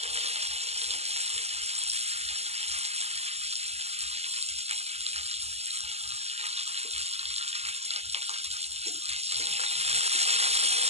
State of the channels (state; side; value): late; left; 0.30 ms